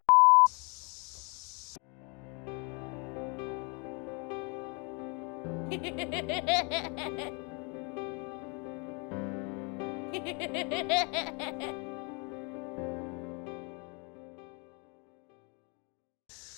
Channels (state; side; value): quieter; right; 33.1 dB